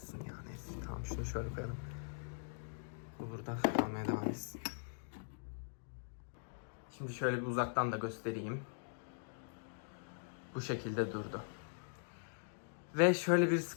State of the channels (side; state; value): right; silent; digital silence